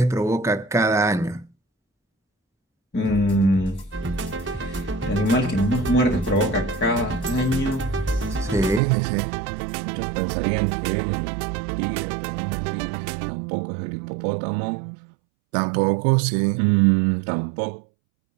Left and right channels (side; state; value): left; drops out; at 8.8 s